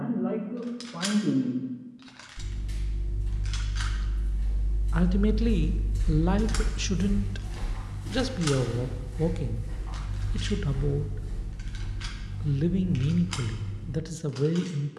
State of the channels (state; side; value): identical; both; correlation 1.00